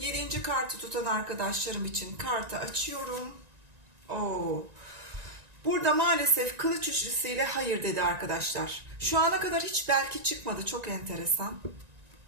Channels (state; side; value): late; left; 1.9 ms